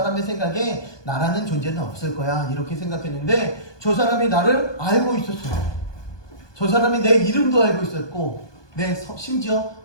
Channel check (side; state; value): right; late; 1.2 ms